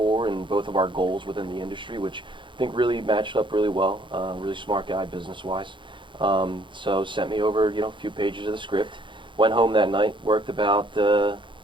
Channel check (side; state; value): left; late; 0.23 ms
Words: and both of our goals within the industry, which I think really matched up really well. Really smart guy business-wise. So sent me over, a few pages of the script. Went home that night, worked about,